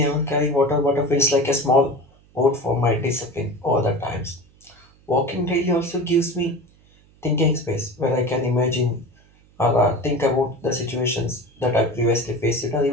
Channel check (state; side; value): noise; right; hum, 30 dB below the sound